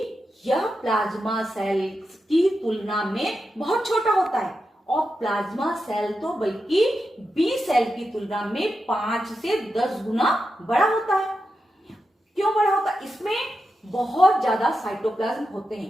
यह प्लाज्मा सेल की तुलना में बहुत छोटा होता है, और प्लाज्मा सेल तो बल्कि बी सेल की तुलना में 5 से 10 गुना बड़ा होता है। क्यों बड़ा होता है, इसमें बहुत ज्यादा साइटोप्लाज्म होते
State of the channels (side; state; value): both; normal; correlation 0.88